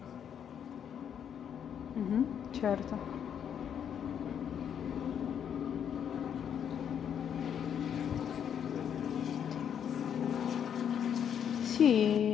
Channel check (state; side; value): quieter; right; 8.5 dB